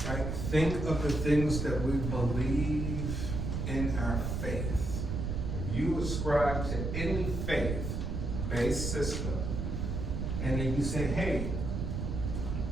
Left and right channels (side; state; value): right; noise; rumble, 2 dB below the sound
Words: Right? Think of the things that we believe in our faith. If you ascribe to any faith-based system, and then you say, hey,